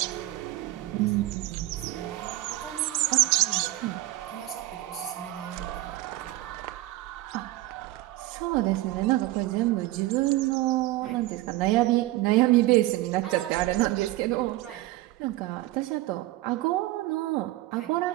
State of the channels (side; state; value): left; quieter; 17.3 dB